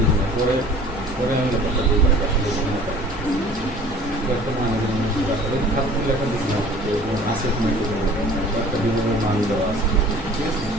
না, পরে আমি ব্যাপারটা বুঝতে পারি আসলে লেখা দিয়েছিলাম আছে একটা বিভিন্ন মান দেওয়া আছে। ঠিক আছে,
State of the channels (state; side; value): normal; both; correlation 0.47